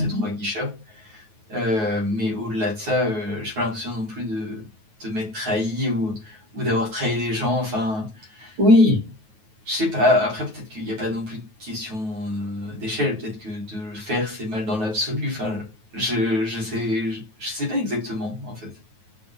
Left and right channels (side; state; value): left; late; 9.3 ms